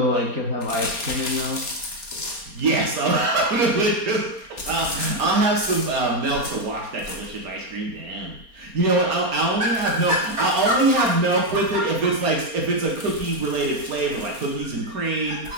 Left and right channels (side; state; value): left; late; 4.3 ms